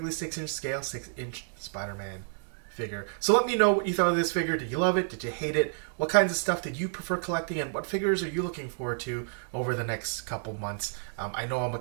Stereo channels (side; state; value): left; silent; digital silence